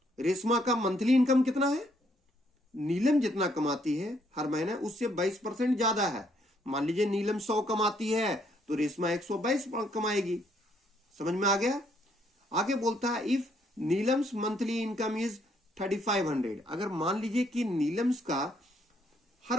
रेशमा का मंथली इनकम कितना है? नीलम जितना कमाती है हर महीने उससे 22% ज्यादा है। मान लीजिए नीलम 100 कमाती है तो रेशमा 122 कमाएगी। समझ में आ गया? आगे बोलता है if Neelam's monthly income is 3500। अगर मान लीजिए कि नीलम्स का हर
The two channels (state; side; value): normal; both; correlation 0.70